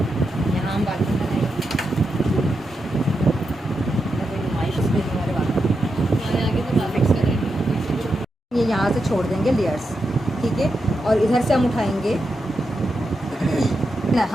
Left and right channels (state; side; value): normal; both; correlation 0.86